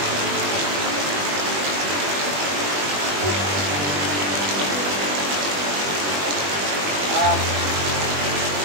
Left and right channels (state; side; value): late; left; 21 ms